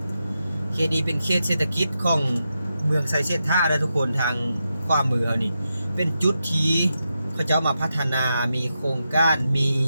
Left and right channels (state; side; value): inverted; both; correlation -0.87